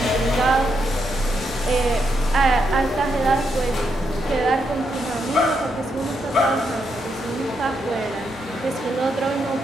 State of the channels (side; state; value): both; normal; correlation 0.80